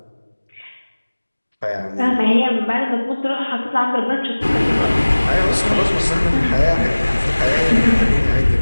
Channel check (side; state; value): both; inverted; correlation -1.00